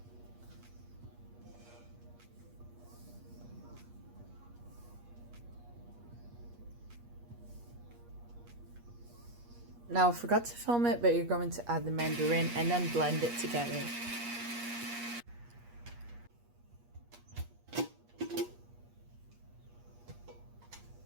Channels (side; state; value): left; late; 8.4 ms